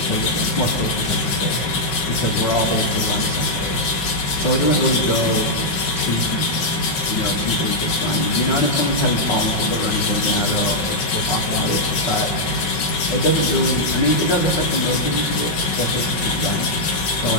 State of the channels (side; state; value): right; late; 5.4 ms